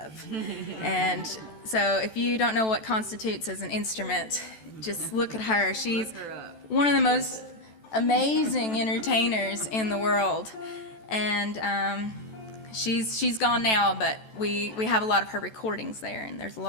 And so if you don't know what constitutes as an instrument, just look at her. She's one of the most amazing entertainers in the world. And she's gone now, but we have a lot of her recordings there, and there's a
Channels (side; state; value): right; late; 14 ms